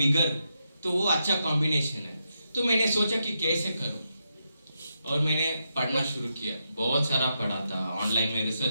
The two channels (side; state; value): both; inverted; correlation -0.84